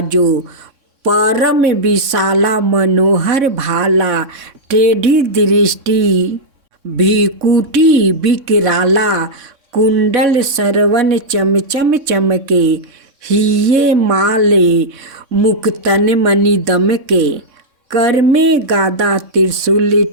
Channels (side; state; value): left; late; 3.6 ms